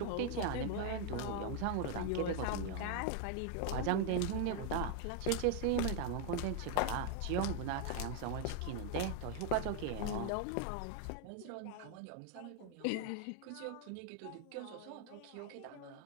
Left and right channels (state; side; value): different; both; correlation 0.00